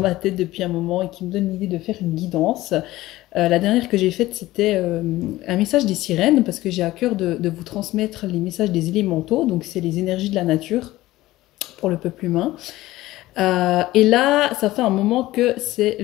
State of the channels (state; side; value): quieter; right; 17.0 dB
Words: tête depuis un moment et qui me donne l'idée de faire une guidance. La dernière que j'ai faite, c'était un message des sirènes, parce que j'ai à cœur de vous transmettre les messages des élémentaux, donc c'est les énergies de la nature pour le peuple humain. Et là, ça fait un moment que c'est